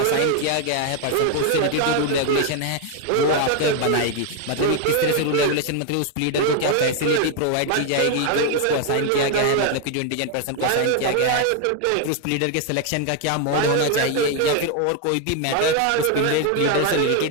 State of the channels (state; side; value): different; both; correlation 0.01